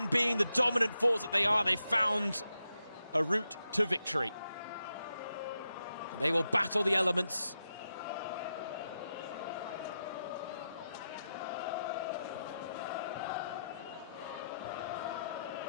being the dominant force that they are, they found a route to victory. They will battle the elements.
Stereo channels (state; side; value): inverted; both; correlation -0.86